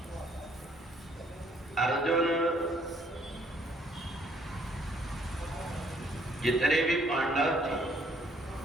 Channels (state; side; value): normal; both; correlation 0.65